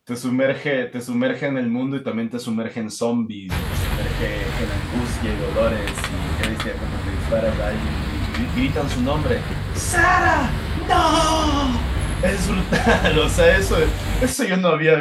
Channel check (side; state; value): both; identical; correlation 1.00